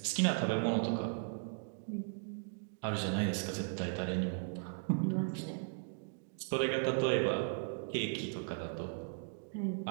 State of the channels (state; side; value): silent; left; digital silence